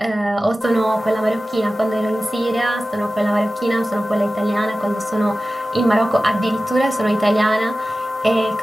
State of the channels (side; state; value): both; normal; correlation 0.95